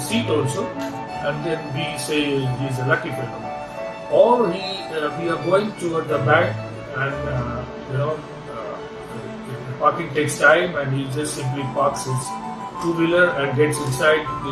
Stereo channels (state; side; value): identical; both; correlation 1.00